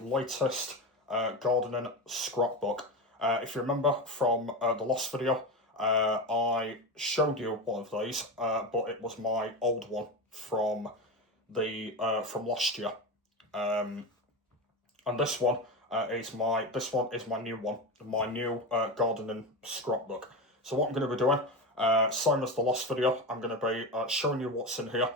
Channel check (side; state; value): both; normal; correlation 0.20